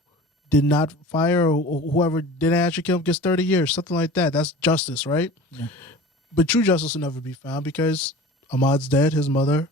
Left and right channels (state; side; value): normal; both; correlation 0.39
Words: did not fire, or whoever didn't actually kill him gets 30 years, something like that. That's justice, right? Yeah. But true justice will never be found because Ahmaud's dead. His mother